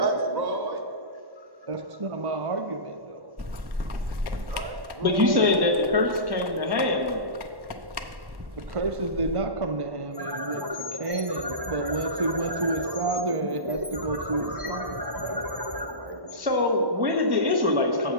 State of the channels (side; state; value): left; late; 1.1 ms